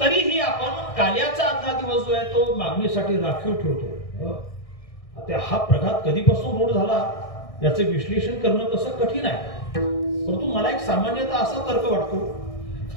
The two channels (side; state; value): right; late; 1.6 ms